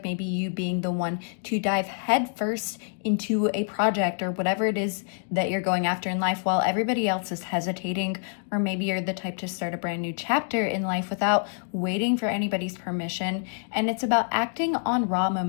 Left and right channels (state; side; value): silent; right; 58 dB below the other